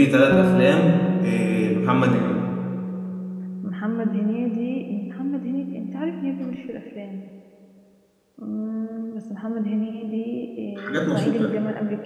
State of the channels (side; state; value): both; identical; correlation 1.00